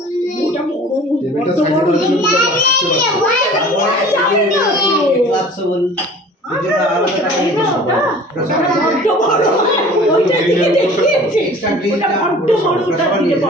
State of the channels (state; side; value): normal; both; correlation 0.45